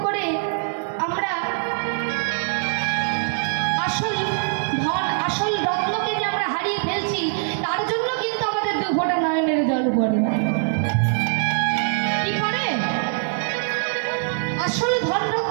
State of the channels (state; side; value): silent; left; 64 dB below the other